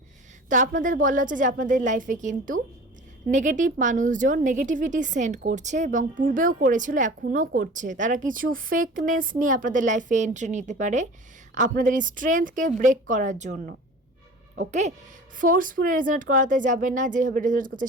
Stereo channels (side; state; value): both; normal; correlation 0.40